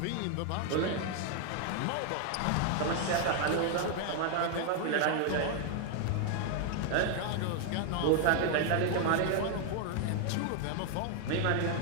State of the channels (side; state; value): both; different; correlation 0.00